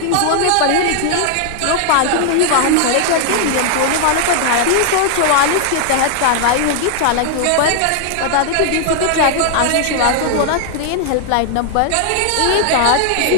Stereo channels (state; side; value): different; both; correlation 0.00